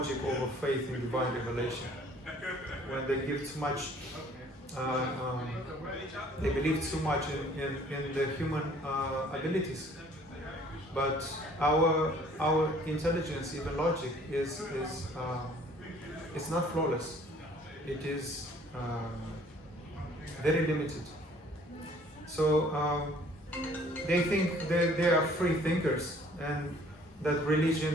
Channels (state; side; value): normal; both; correlation 0.56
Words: over faith in divine revelation. When they give too much, they believe too much in the human abilities. But our intelligence, even logic, is it's not flawless. It is very limited. So they think they are free thinkers, and that